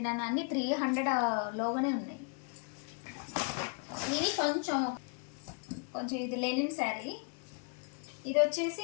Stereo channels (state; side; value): quieter; right; 39.3 dB